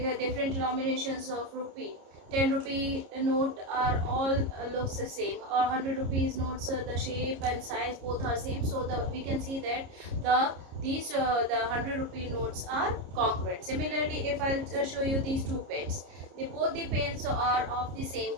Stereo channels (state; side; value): late; left; 30 ms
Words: the different denominations of rupee. 10 rupee note are all looks the same, or 100 rupees notes, the shape and size both are same. So we can see that the 100 rupee notes are congruent. Similarly, if I'll show you these two pens, both the pens are of the same